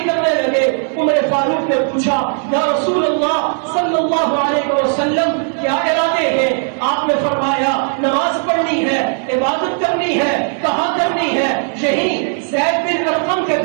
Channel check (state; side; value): silent; left; 55 dB below the other